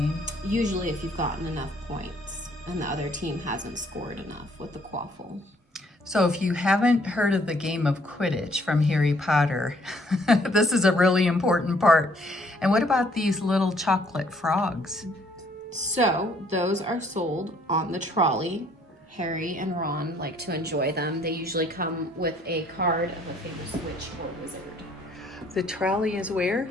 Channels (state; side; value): normal; both; correlation 0.63